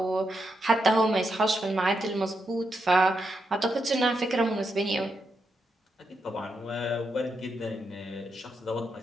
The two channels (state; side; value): normal; both; correlation 0.83